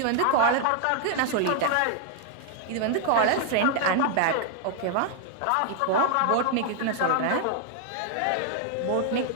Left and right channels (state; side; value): different; both; correlation 0.00